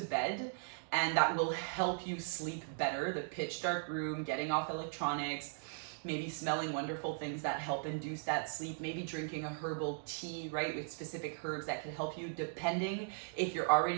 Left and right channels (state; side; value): silent; left; digital silence